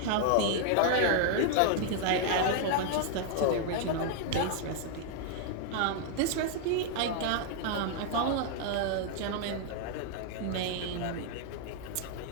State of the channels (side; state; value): both; different; correlation 0.00